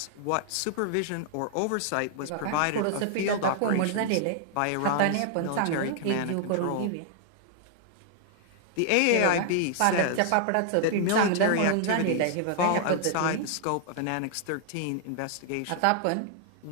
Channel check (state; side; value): different; both; correlation 0.00